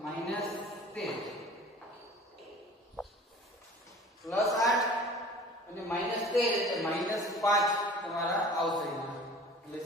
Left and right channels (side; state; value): both; normal; correlation 0.44